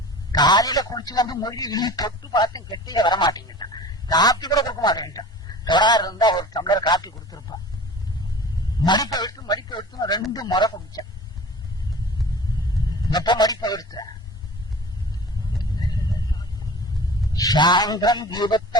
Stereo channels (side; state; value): both; normal; correlation 0.40